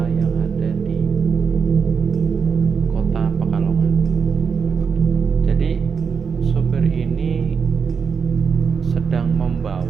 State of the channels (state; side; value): quieter; left; 6.1 dB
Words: yang ada di kota Pekalongan. Jadi sopir ini sedang